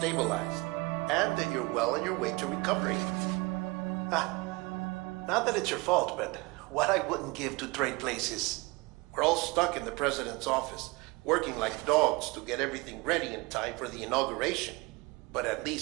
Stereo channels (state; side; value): quieter; left; 25.1 dB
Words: and that you're well on your way to recovery. Not that it's your fault, but what I wouldn't give to trade places. We're all stuck in the president's office, working like dogs to get everything ready in time for the inauguration. But at